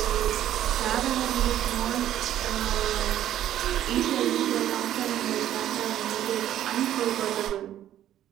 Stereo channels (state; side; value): quieter; left; 11.9 dB